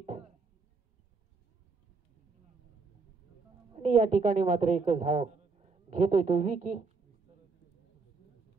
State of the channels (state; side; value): quieter; left; 4.4 dB